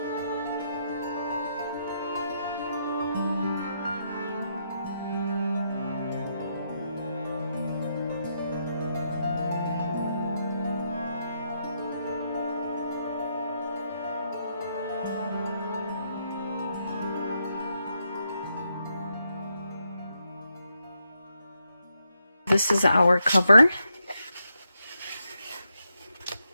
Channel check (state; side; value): inverted; both; correlation -0.80